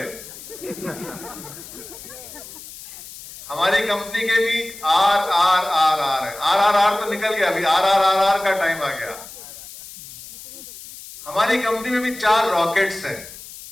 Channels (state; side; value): noise; left; hiss, 15 dB below the sound